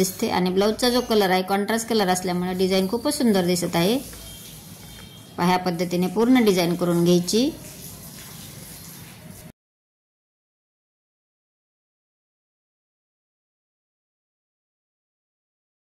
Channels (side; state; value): both; identical; correlation 1.00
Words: आणि ब्लाऊजचा जो कलर आहे कॉन्ट्रास्ट कलर असल्यामुळे डिझाईन खूपच सुंदर दिसत आहे। ह्या पद्धतीने पूर्ण डिझाईन करून घ्यायची।